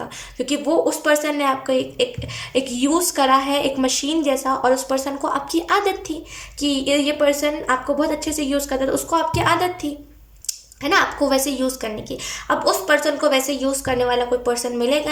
क्योंकि वो उस पर्सन ने आपको एक यूज़ करा है, एक मशीन जैसा। और उस पर्सन को आपकी आदत थी कि ये पर्सन आपको बहुत अच्छे से यूज़ करता था, उसको आपकी आदत थी, है ना, आपको वैसे यूज़ करने की। अब उस पर्सन को वैसे यूज़ करने वाला कोई पर्सन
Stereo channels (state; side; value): identical; both; correlation 1.00